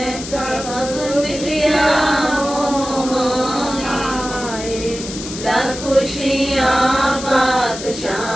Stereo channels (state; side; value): noise; left; hiss, 10 dB below the sound